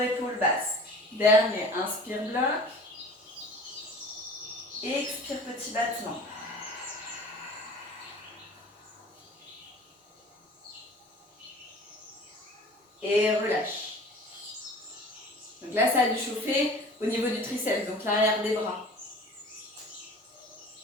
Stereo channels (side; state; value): both; normal; correlation 0.43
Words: basses. Dernier, inspire, bloc. Expire, petit battement. Et relâche. Donc là, ça a dû chauffer au niveau du triceps, donc l'arrière des bras.